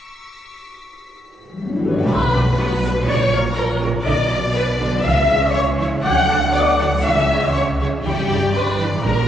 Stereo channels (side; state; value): both; normal; correlation 0.80